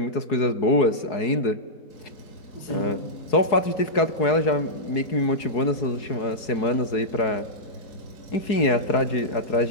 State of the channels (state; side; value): late; right; 4.7 ms